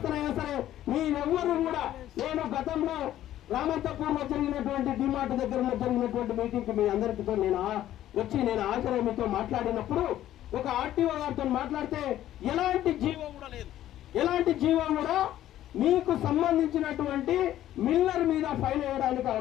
సరే, మీరెవ్వరూ కూడా, నేను గతంలో రామంతపూర్లో జరిగినటువంటి డిమార్ట్ దగ్గర జరిగినటువంటి మీటింగ్ కి మీ అందరితో నేను హాజరై మీతో మాట్లాడినప్పుడు ఒక ఆర్టీఓ గారితో మాట్లాడితే ఎలాంటి జీవో కూడా మీకు సంబంధించినటువంటి మిల్లర్ మీద ఫైన్ వేయడానికి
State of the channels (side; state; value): right; quieter; 12.8 dB